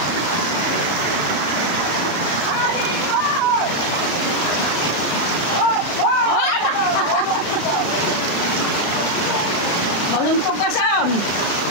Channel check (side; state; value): right; late; 34 ms